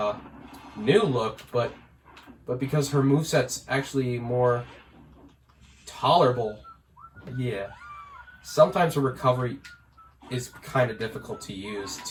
new look, but because her moveset's actually more tolerable. Yeah. Sometimes the recovery is kind of difficult to use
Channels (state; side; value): identical; both; correlation 1.00